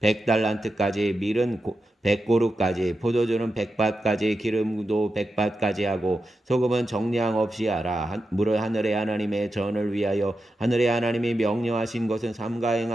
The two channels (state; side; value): normal; both; correlation 0.89